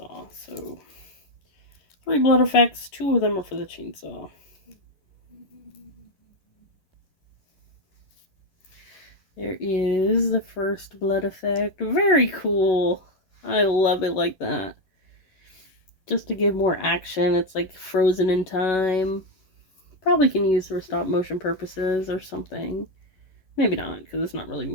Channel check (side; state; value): right; late; 11 ms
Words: So 3 blood effects, 2 of them are for the chainsaw. There is the first blood effect. Very cool. I love it like that. Just to give more action, it's like frozen in time. Probably can use for stop motion purposes or something. Maybe not, because it's not really